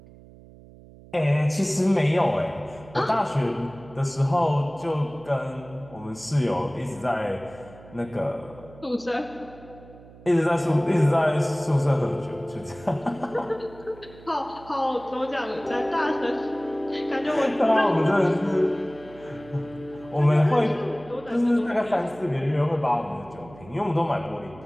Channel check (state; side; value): noise; right; hum, 21 dB below the sound